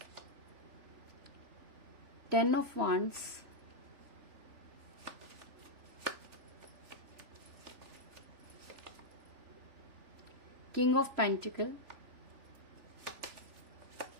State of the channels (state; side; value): late; left; 3.0 ms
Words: Ten of Wands, King of Pentacles,